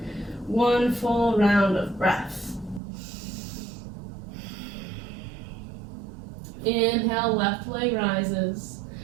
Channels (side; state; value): left; drops out; at 2.8 s